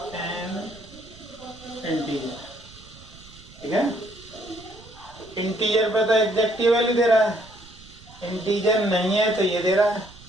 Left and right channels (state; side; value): noise; right; rumble, 21 dB below the sound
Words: an integer. ठीक है। इंटीजर पे तो एग्जैक्ट वैल्यू दे रहा है, इंटीजर नहीं है तो ये दे रहा है।